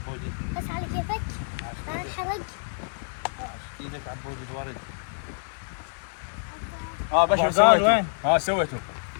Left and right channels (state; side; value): silent; right; digital silence